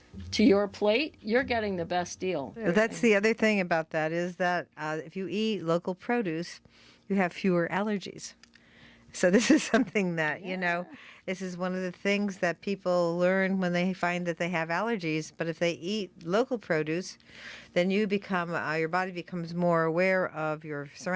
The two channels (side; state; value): both; identical; correlation 1.00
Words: to your plate, you're getting the best deal. That's the other thing about that is that if you eat local produce, you have fewer allergies. So this is something that, this is one of the things that people learn when they find that they have allergies. But if they eat local produce, then you become, your body becomes more aware of your